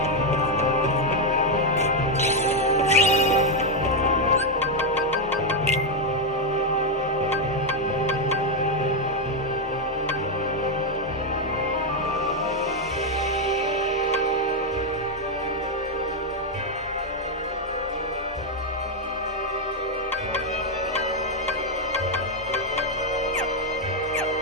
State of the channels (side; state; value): both; normal; correlation 0.02